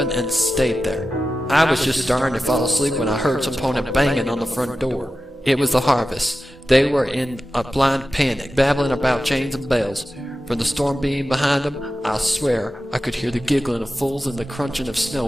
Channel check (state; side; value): normal; both; correlation 0.93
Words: and stayed there. I was just starting to fall asleep when I heard some opponent banging on the front door. It was the harvest. They were in a blind panic, babbling about chains and bells. From the storm being behind them, I swear I could hear the giggling of fools and the crunching of snow